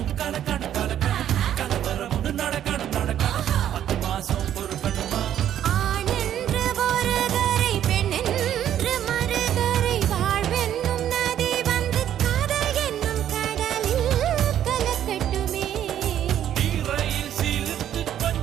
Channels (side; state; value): left; quieter; 10.7 dB